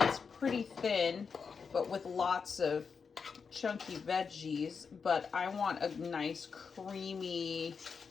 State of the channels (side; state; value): right; quieter; 5.7 dB